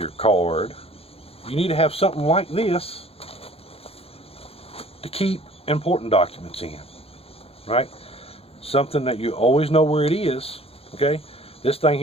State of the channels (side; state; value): right; late; 0.28 ms